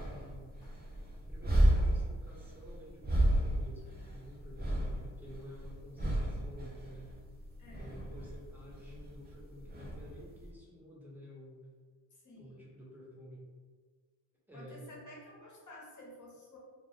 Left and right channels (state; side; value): normal; both; correlation 0.89